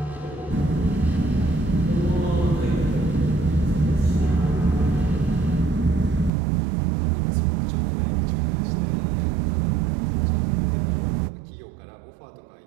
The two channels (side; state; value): left; drops out; at 6.3 s